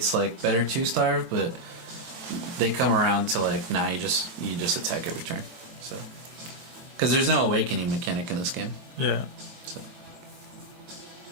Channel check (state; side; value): late; left; 22 ms